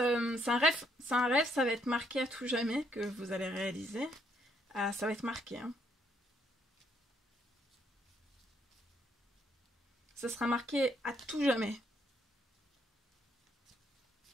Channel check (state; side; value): normal; both; correlation 0.71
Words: un rêve, ça va être marqué à tout jamais que vous allez réaliser. Ça va être marqué. Hein. Ça sera marqué à tout jamais.